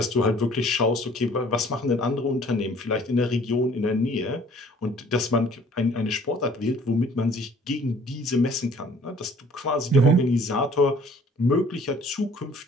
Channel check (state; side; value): normal; both; correlation 0.55